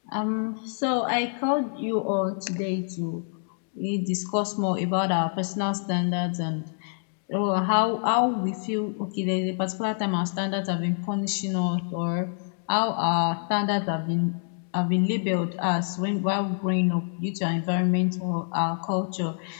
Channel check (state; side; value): silent; right; 60 dB below the other